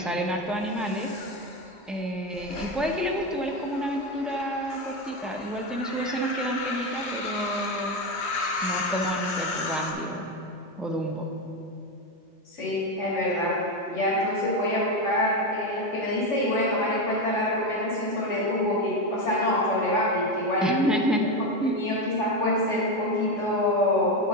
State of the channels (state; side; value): normal; both; correlation 0.14